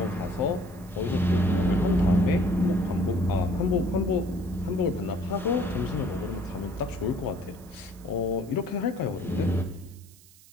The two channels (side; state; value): right; noise; hiss, 24 dB below the sound